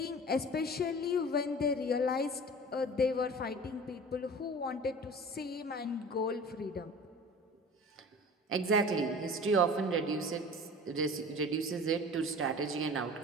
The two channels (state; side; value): normal; both; correlation 0.40